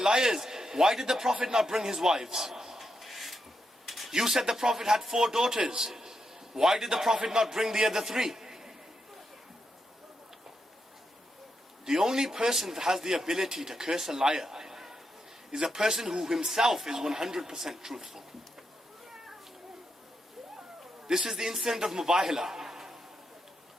why did the Prophet not bring his wives? You said the Prophet had 4 daughters. Why did the Prophet not bring the other 3? The only person that has the ability to curse a liar is a person who himself is 100% truthful. This is the incident of Mubahila.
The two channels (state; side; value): normal; both; correlation 0.84